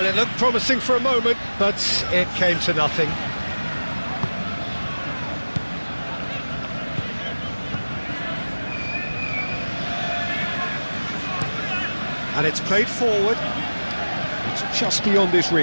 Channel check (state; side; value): inverted; both; correlation -1.00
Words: it looked promising for a moment, but it came to nothing. And it's played forward. It's just beyond his